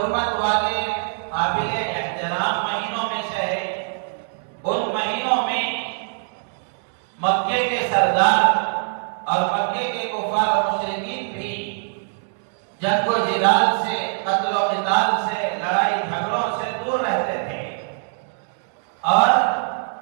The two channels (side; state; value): left; silent; digital silence